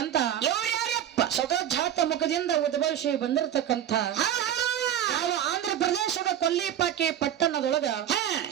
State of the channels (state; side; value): quieter; left; 10.5 dB